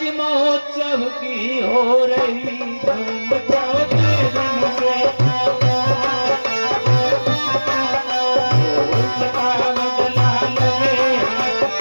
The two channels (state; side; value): inverted; both; correlation -1.00